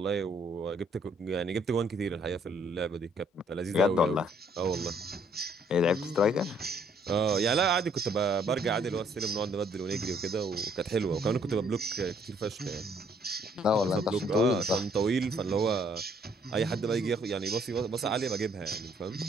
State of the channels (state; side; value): normal; both; correlation 0.65